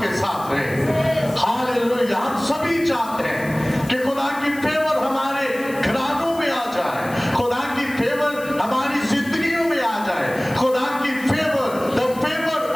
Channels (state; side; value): noise; left; hiss, 18 dB below the sound